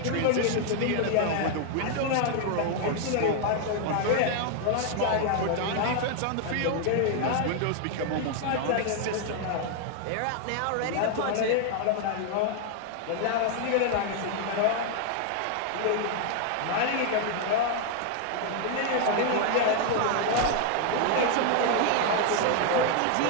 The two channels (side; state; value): both; different; correlation 0.00